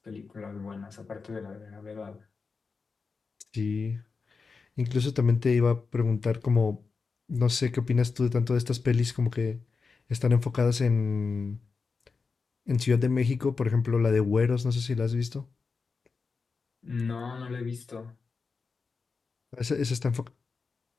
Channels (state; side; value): quieter; right; 4.7 dB